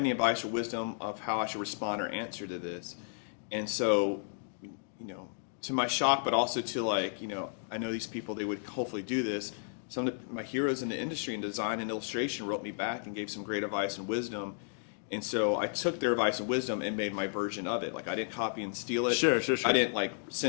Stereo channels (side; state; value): right; silent; digital silence